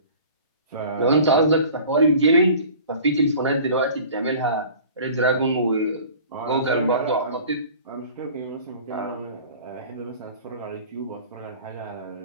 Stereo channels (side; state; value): both; inverted; correlation -0.44